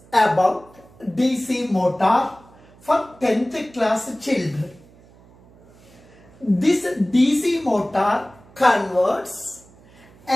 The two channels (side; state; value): right; noise; hum, 26 dB below the sound